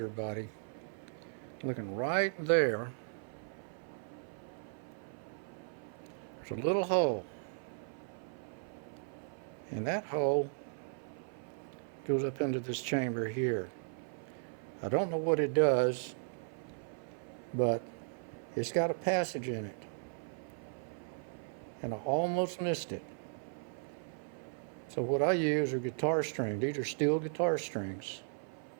body, looking right there. There's a little hole, and that hole goes up into this chamber here. I don't know what it does, but it's got a passage in it, and I almost missed it. So what I use are guitar strings. These are steel guitar strings.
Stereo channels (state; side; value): silent; left; 53 dB below the other